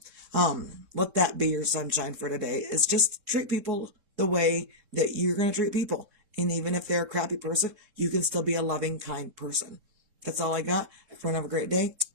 let that be your sunshine for today, is just treat people the way that you're going to treat people. And even if they're a crappy person, you can still be a loving, kind person. That's all I got. Everyone have a great day.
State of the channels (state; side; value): late; left; 3.7 ms